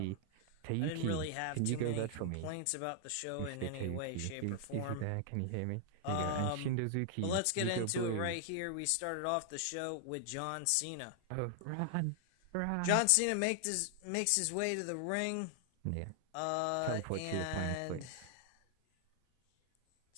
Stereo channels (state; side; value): different; both; correlation 0.00